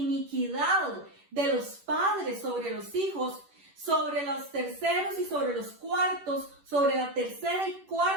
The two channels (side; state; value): left; late; 10 ms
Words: de los padres sobre los hijos, sobre los terceros y sobre los cuartos, sobre la tercera y